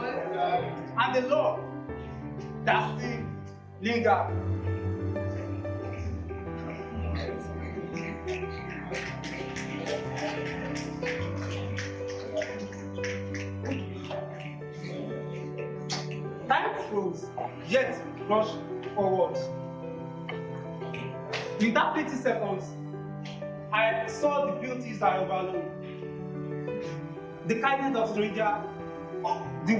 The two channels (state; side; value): identical; both; correlation 1.00